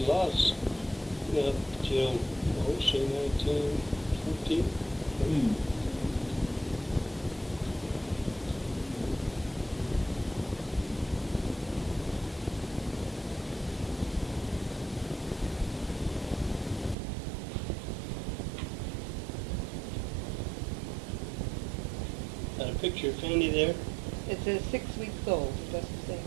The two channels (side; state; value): left; drops out; at 16.9 s